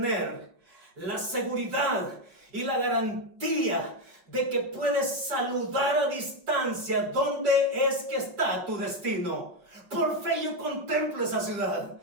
la seguridad y la garantía de que puedes saludar a distancia dónde es que está tu destino. Por fe yo contemplo esa ciudad.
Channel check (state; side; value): late; left; 6.3 ms